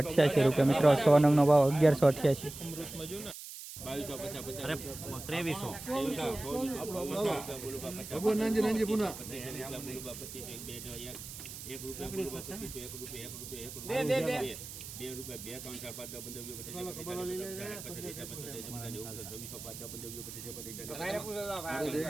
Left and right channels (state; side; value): noise; right; hiss, 11 dB below the sound